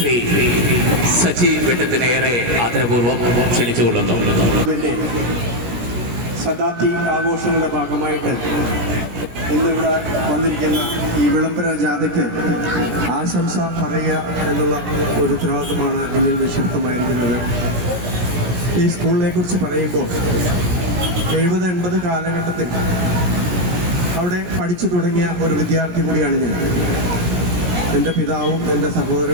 സച്ചി വെട്ടത്തിനേറെ ആദരപൂർവ്വം ക്ഷണിച്ചുകൊള്ളുന്നു. ശതാബ്ദി ആഘോഷങ്ങളുടെ ഭാഗമായിട്ട് ഇന്നിവിടെ വന്നിരിക്കുന്ന ഈ വിളംബര ജാഥയ്ക്ക് ആശംസ പറയുക എന്നുള്ള ഒരു ഉത്തരവാദിത്തമാണ് എന്നിൽ നിക്ഷിപ്തമായിരിക്കുന്നത്. ഈ സ്കൂളിനെ കുറിച്ച് പറയുമ്പോൾ 70-80 കാലഘട്ടത്തിൽ അവിടെ പഠിച്ചു തുടങ്ങിയ ഒരു വിദ്യാർത്ഥി കൂടിയാണ് ഞാൻ. എൻ്റെ പിതാവും എൻ്റെ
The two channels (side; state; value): left; late; 17 ms